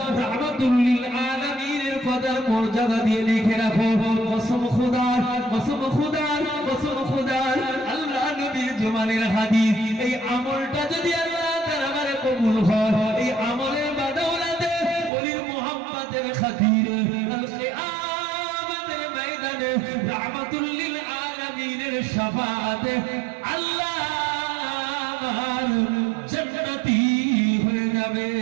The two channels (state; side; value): drops out; left; at 15.1 s